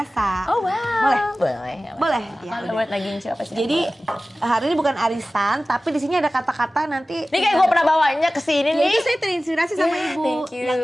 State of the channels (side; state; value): both; normal; correlation 0.97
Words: Oh wow. Boleh? Boleh. Ya, Buat lagi siapa sih? jadi hari ini bukan arisan, tapi di sini ada kata-kata nanti. Ini kayak gue pernah bawanya ke sini Ya, nih. itu saya terinspirasi sama Ibu thank you. yang